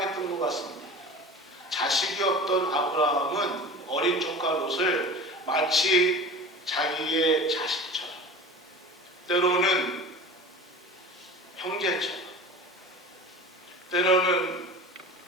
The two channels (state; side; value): normal; both; correlation 0.37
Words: 것 같습니다. 자식이 없던 아브라함은 어린 조카 롯을 마치 자기의 자식처럼 때로는 형제처럼 때로는